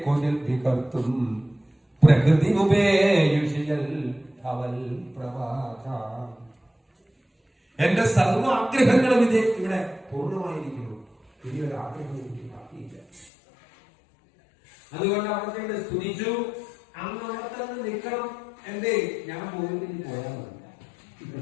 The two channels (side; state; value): right; drops out; at 13.3 s